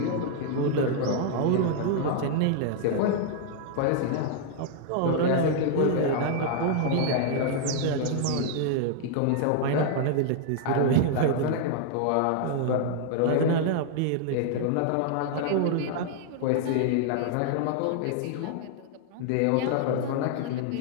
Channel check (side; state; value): both; different; correlation 0.00